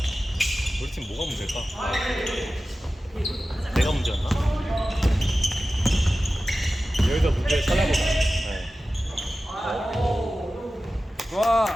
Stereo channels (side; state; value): both; normal; correlation 0.95